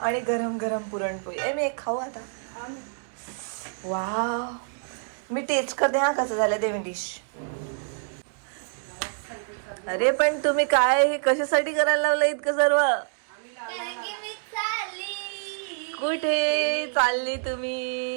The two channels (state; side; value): silent; left; digital silence